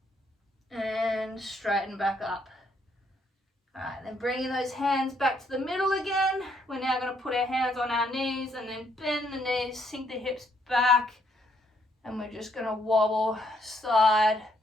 and straighten back up. Alright, then bringing those hands back to the middle again. We're now going to put our hands on our knees and then bend the knees, sink the hips back, and we're just going to wobble side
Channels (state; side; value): normal; both; correlation 0.71